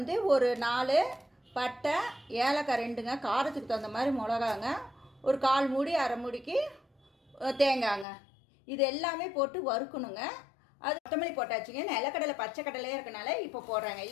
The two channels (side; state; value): right; drops out; at 8.1 s